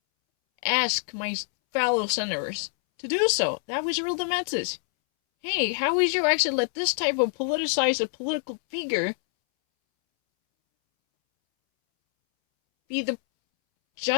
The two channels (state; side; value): silent; right; 61 dB below the other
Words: ask my fellow senators to do so. That was really the message. Hey, how would you actually let this type of politicized a political figure be the